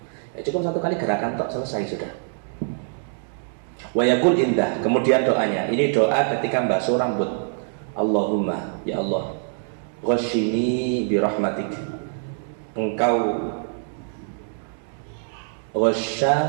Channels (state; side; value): silent; left; digital silence